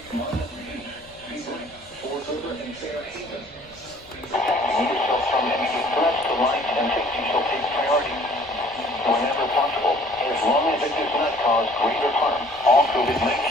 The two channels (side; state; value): left; noise; rumble, 26 dB below the sound